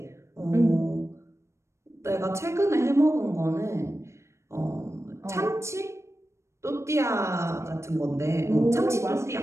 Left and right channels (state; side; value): late; left; 0.13 ms